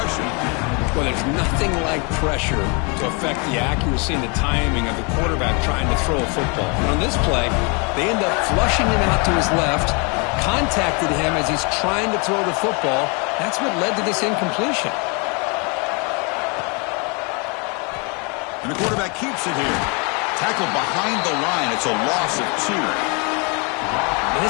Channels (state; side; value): quieter; right; 32.8 dB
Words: Well, there's nothing like pressure to affect the accuracy and the timing of the quarterback trying to throw a football. And on this play, they end up flushing him out to his left, contacted him as he's trying to throw the football. That's what led to this incompletion. And the quarterback keeps it here. Tackled behind the line. It's a loss of 2. And